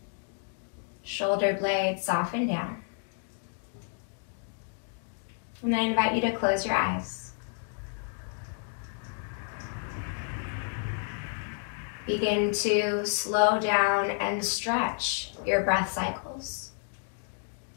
Shoulder blades soften down. And I invite you to close your eyes. Begin to slow down and stretch your breath cycles.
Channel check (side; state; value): right; silent; 56 dB below the other